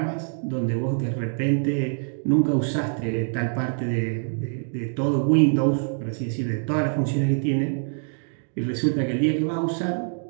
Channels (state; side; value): silent; left; digital silence